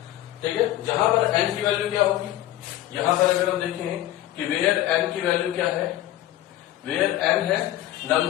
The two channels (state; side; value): quieter; right; 14.0 dB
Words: ठीक है। जहां पर n की वैल्यू क्या होगी, यहां पर अगर हम देखें कि वेयर n की वैल्यू क्या है, वेयर n है